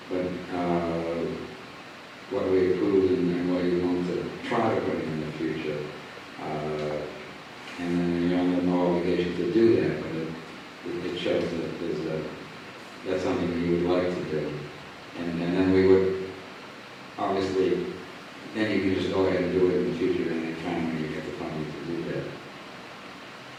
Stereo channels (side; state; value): both; identical; correlation 1.00